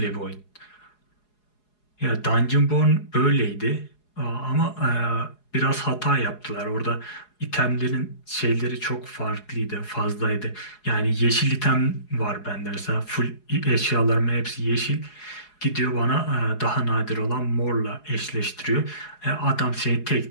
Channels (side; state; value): right; late; 4.8 ms